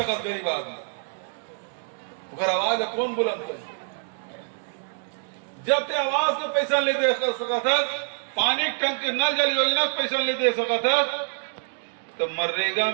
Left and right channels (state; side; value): silent; left; digital silence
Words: गरीब आदमी, अगर आवाज कौन बुलंद करे? जब ते आवास के पैसा नहीं दे सकत है, पानी टंकी नल जल योजना के पैसा नहीं दे सकत है, तो मनरेगा